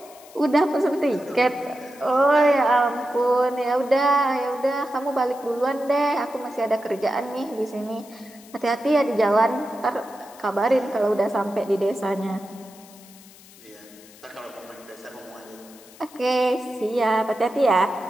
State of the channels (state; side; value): noise; left; hiss, 22 dB below the sound